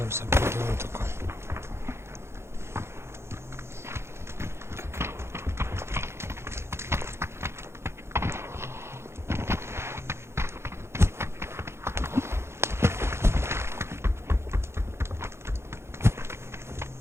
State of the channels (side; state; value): left; late; 0.13 ms